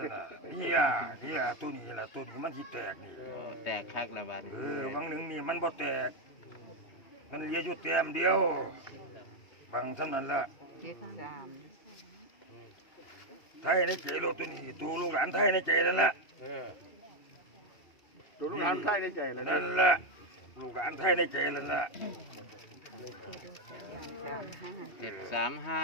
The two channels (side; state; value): right; late; 2.7 ms